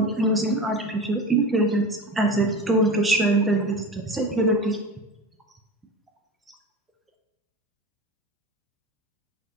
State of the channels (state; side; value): normal; both; correlation 0.29